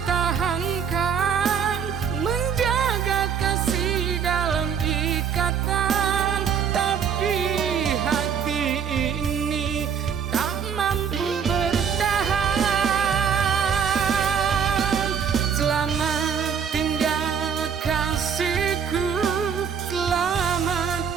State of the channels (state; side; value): quieter; left; 7.2 dB